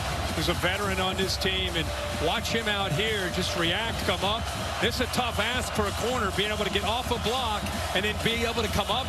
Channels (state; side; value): identical; both; correlation 1.00